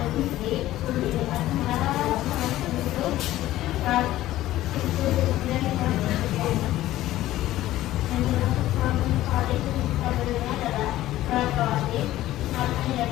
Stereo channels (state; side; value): quieter; right; 14.9 dB